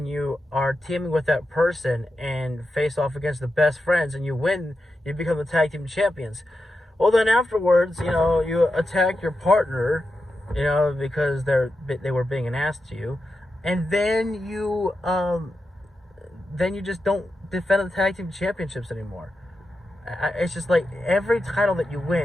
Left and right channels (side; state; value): both; normal; correlation 0.89